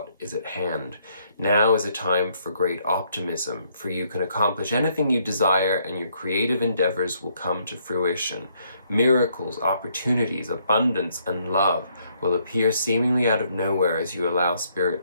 is at hand. Now is a time for great optimism, for you can accomplish anything you desire and your creative endeavors will come to fruition. Miracles, opportunities, abundance, and love will appear seemingly out of nowhere as you allow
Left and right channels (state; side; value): inverted; both; correlation -0.70